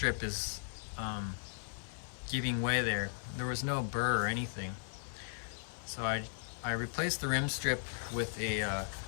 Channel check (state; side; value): silent; right; 53 dB below the other